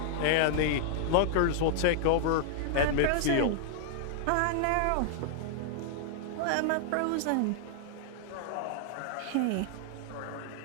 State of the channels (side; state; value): both; different; correlation -0.01